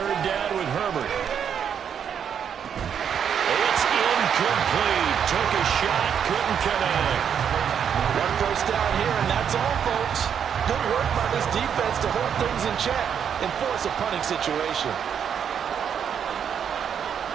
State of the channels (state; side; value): quieter; left; 8.0 dB